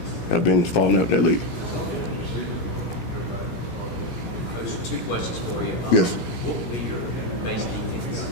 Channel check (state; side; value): late; right; 17 ms